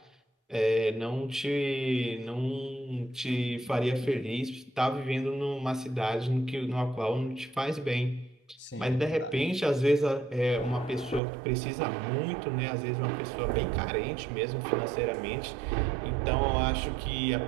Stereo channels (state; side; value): drops out; left; at 11.2 s